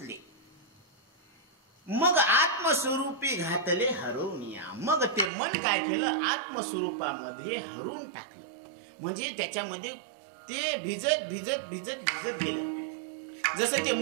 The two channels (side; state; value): left; drops out; at 5.3 s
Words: मग आत्मस्वरूपी घातले हरवनिया. मग ते मन काय केलं, आत्मस्वरूपामध्ये हरवून टाकलं. म्हणजे त्याच्यामध्ये ते भिजत भिजत भिजत भिजत गेलं. जसं ते